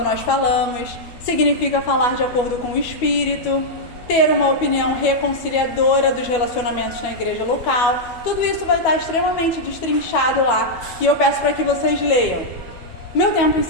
nós falamos. Significa falar de acordo com o Espírito, ter uma opinião reconciliadora dos relacionamentos na igreja local. Tudo isso vai estar extremamente destrinchado lá e eu peço para que vocês leiam. Meu tempo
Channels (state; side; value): late; right; 12 ms